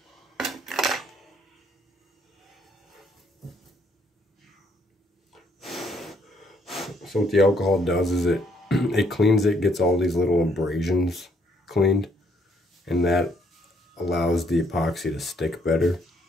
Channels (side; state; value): both; normal; correlation 0.69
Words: So what the alcohol does is it cleans it, gets all these little abrasions cleaned, and that allows the epoxy to stick better.